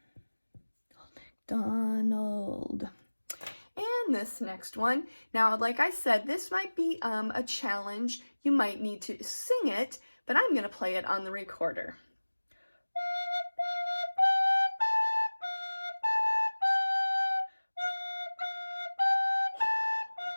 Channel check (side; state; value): both; inverted; correlation -1.00